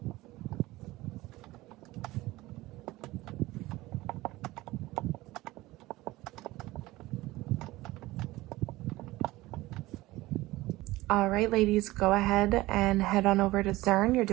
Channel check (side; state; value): left; quieter; 18.6 dB